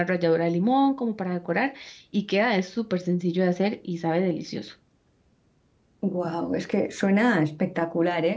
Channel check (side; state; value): both; identical; correlation 1.00